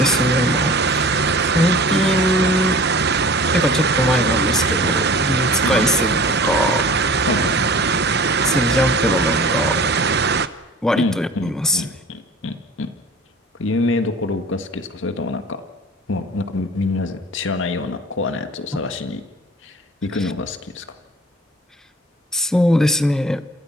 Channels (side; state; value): both; normal; correlation 0.44